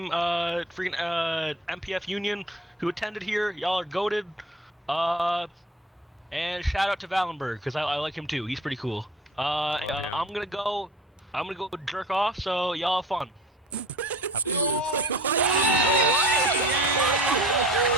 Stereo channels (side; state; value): both; normal; correlation 0.43